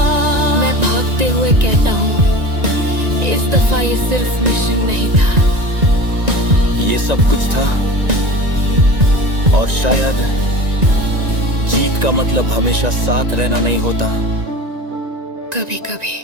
मैं भागते हुए कहता हूँ, इस दफा ये सिर्फ मिशन नहीं था। ये सब कुछ था, और शायद जीत का मतलब हमेशा साथ रहना नहीं होता। कभी कभी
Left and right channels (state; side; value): late; left; 1.9 ms